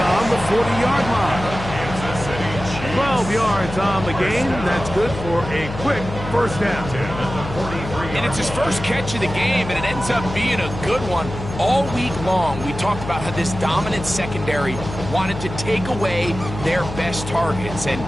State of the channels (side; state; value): left; noise; hum, 9 dB below the sound